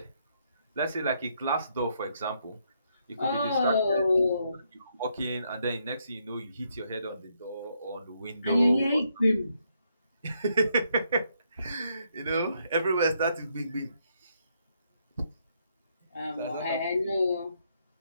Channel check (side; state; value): both; inverted; correlation -0.75